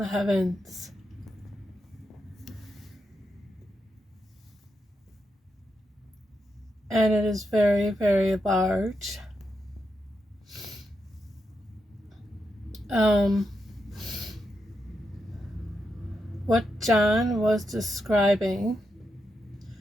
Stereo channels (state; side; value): normal; both; correlation 0.85